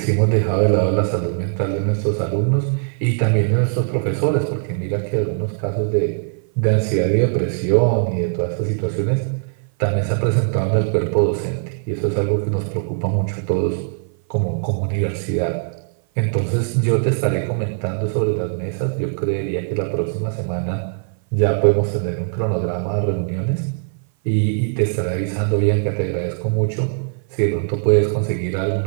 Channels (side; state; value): left; silent; 56 dB below the other